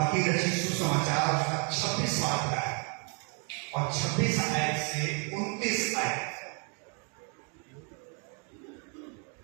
रचित सुसमाचार उसका 26वां अध्याय और 26 आयत से 29 आयत।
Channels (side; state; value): left; quieter; 38.0 dB